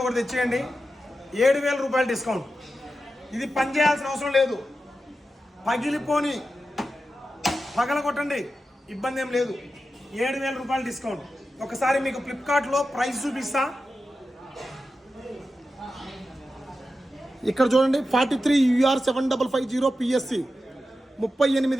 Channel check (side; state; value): both; normal; correlation 0.91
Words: ఒకటి తెచ్చేయండి, 7,000 రూపాయలు డిస్కౌంట్. ఇది పని చేయాల్సిన అవసరం లేదు, పగిలిపోని పగల కొట్టండి, ఇబ్బంది ఏం లేదు. 7,000 రూపాయలు డిస్కౌంట్. ఒకసారి మీకు ఫ్లిప్కార్ట్లో ప్రైస్ చూపిస్తా. ఇక్కడ చూడండి, 43UR7550 PSC